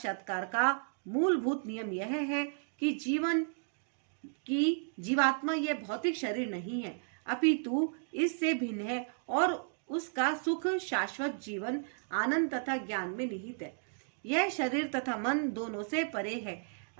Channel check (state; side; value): silent; left; digital silence